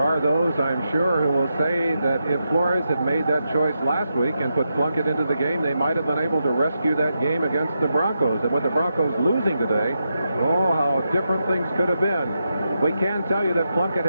those, I'm sure, who will say that if Flores had made that choice last week and put Plunkett into the game, they might have been able to rescue that game against the Broncos. And with the Broncos losing today, oh, how different things could have been. We can tell you that Plunkett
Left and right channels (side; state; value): both; inverted; correlation -0.86